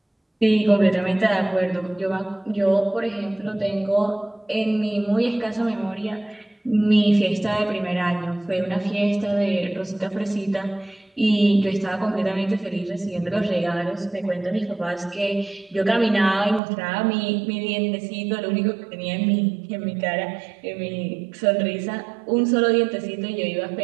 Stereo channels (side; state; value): left; drops out; at 16.6 s